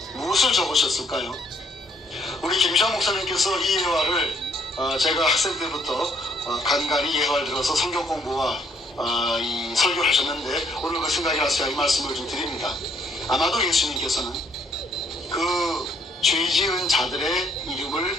무엇을 적으셨을까요? 우리 김시환 목사님께서 이 예화를 제가 학생 때부터 간간히 예화를 들어서 성경 공부와 이 설교를 하셨는데, 오늘 그 생각이 나서 제가 이 말씀을 좀 드립니다. 아마도 예수님께서는 그 죄 지은 자들의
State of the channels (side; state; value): both; normal; correlation 0.67